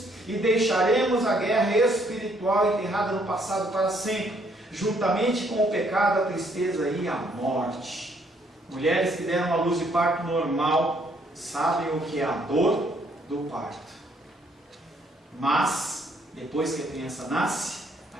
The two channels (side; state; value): both; normal; correlation 0.68